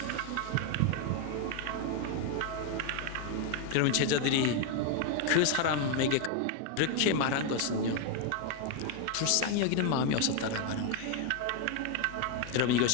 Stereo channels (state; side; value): different; both; correlation 0.01